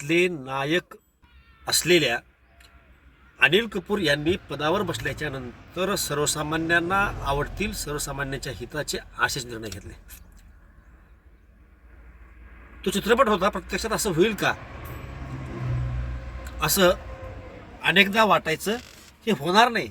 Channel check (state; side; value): identical; both; correlation 1.00